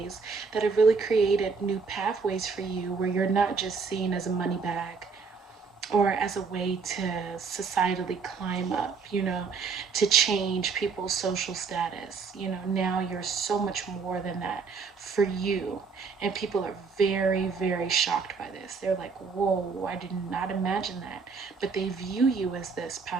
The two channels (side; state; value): left; quieter; 5.1 dB